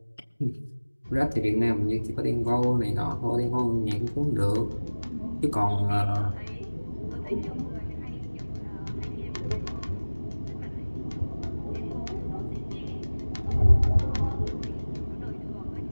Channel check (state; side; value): inverted; both; correlation -1.00